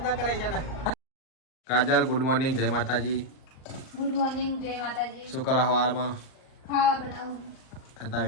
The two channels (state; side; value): late; right; 38 ms